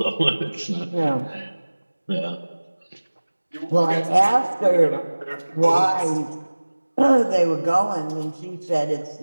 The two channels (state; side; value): inverted; both; correlation -1.00